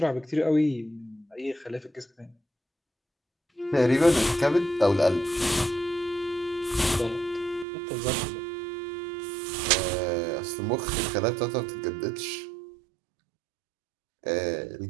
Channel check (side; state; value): left; drops out; at 7.7 s